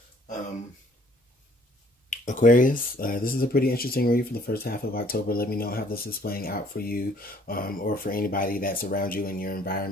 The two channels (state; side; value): normal; both; correlation 0.59